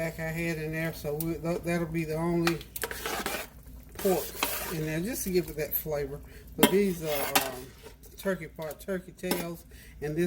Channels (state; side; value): identical; both; correlation 1.00